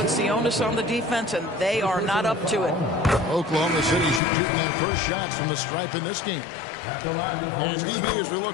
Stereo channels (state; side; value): drops out; right; at 4.2 s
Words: the onus on the defense, and they are not up to it. Oklahoma City shooting their first shots from the stripe in this game. And DB, as we